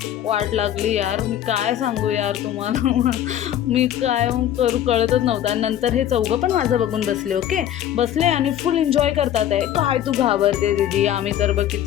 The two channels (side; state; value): right; quieter; 11.2 dB